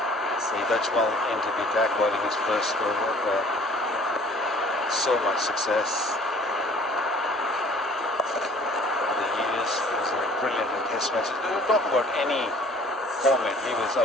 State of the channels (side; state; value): both; normal; correlation 0.53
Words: Saeed Ajmal into the attack, bowling his first over. So much success. Over the years, he was brilliant in test matches. We don't talk about any format. He was